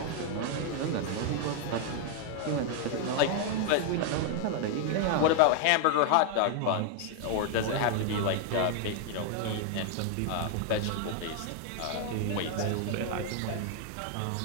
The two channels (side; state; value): both; different; correlation 0.00